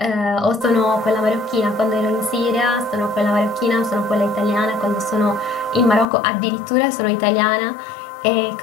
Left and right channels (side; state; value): right; drops out; at 6.1 s